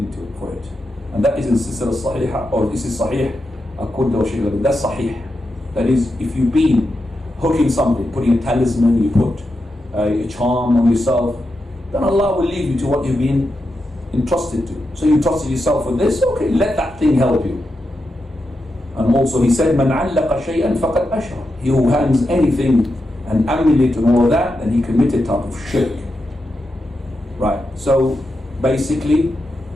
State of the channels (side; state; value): both; normal; correlation 0.87